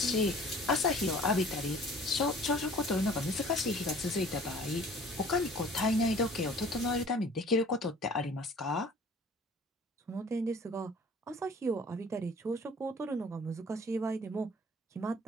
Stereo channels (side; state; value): both; normal; correlation 0.50